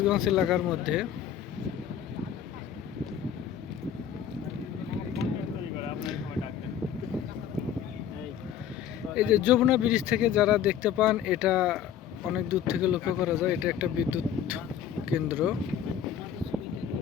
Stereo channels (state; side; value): quieter; right; 9.2 dB